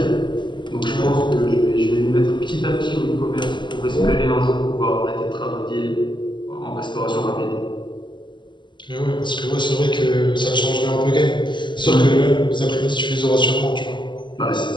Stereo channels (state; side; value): late; right; 0.22 ms